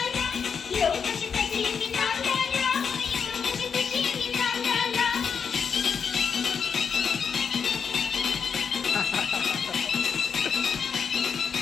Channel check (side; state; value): right; quieter; 6.4 dB